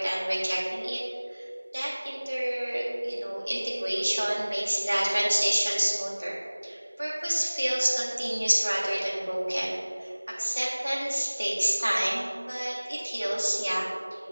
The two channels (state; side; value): inverted; both; correlation -1.00